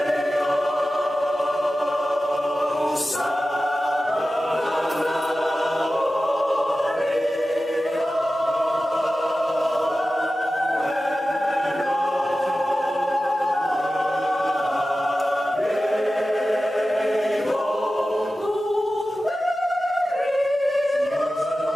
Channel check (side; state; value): both; normal; correlation 0.94